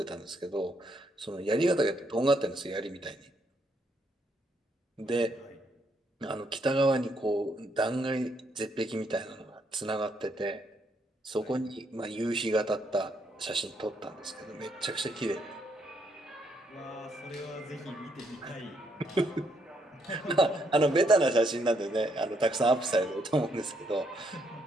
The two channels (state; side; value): normal; both; correlation 0.74